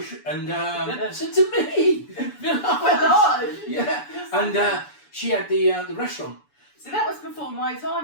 and said to me, village. Yeah. And she had the restaurant. So that was before my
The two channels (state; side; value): late; right; 7.0 ms